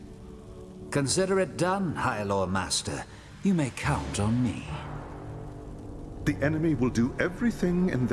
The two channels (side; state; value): both; identical; correlation 1.00